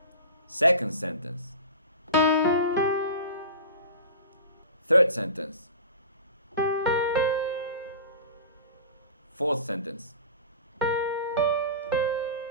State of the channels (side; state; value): both; inverted; correlation -0.36